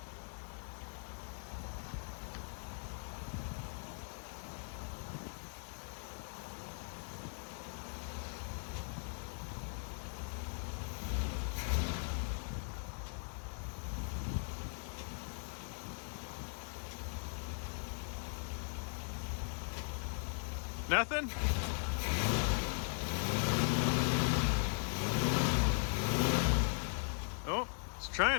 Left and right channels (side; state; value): right; silent; 52 dB below the other